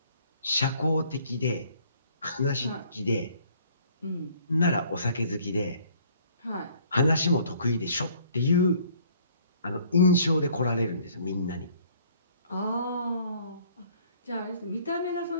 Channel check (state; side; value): inverted; both; correlation -0.59